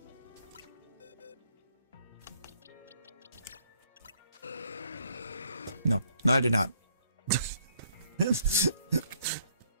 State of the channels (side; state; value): both; inverted; correlation -0.68